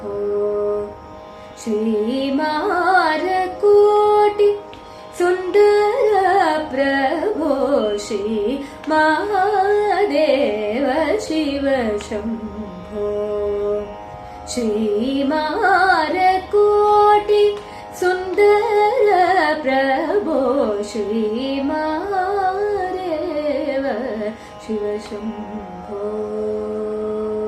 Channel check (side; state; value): both; identical; correlation 1.00